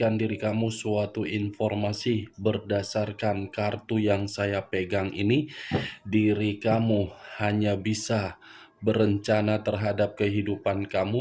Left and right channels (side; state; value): both; identical; correlation 1.00